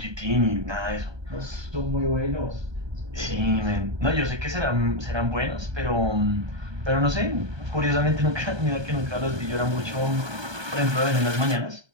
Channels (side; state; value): left; late; 1.2 ms